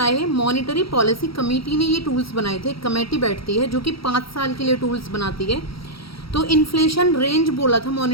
हैं? मॉनेटरी पॉलिसी कमेटी ने ये टूल्स बनाए थे। कमेटी बैठती है जो कि 5 साल के लिए टूल्स बनाती है। तो इन्फ्लेशन रेंज बोला था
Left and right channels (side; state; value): right; late; 0.75 ms